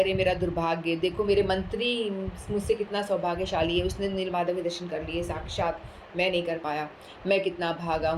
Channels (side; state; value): both; identical; correlation 1.00